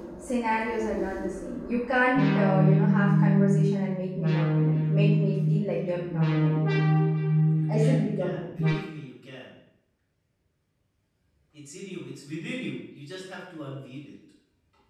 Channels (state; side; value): identical; both; correlation 1.00